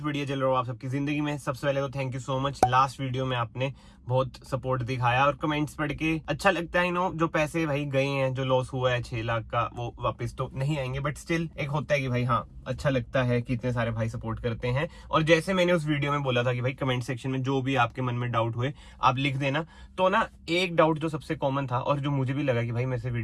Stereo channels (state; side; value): identical; both; correlation 1.00